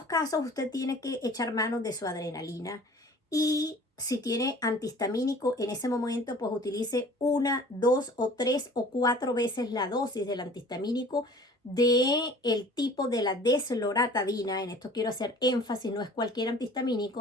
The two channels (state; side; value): normal; both; correlation 0.47